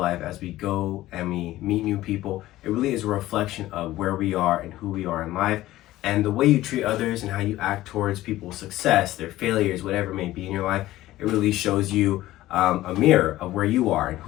as we go and we meet new people, it really is a reflection of where we are and who we are in life. And the way you treat others and how you act towards people's success, their failures, whatever it may be in your life, it really shows you a mirror of where you are and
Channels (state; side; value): quieter; right; 15.8 dB